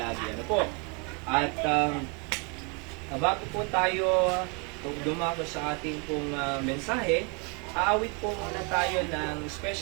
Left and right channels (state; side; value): quieter; left; 33.7 dB